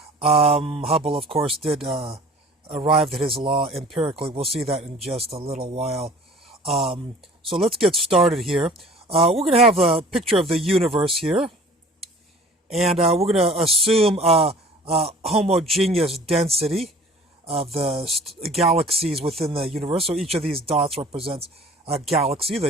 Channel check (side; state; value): both; normal; correlation 0.48